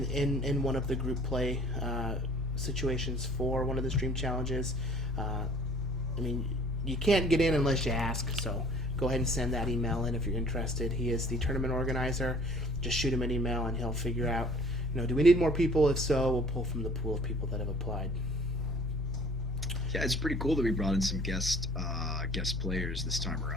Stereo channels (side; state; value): both; normal; correlation 0.53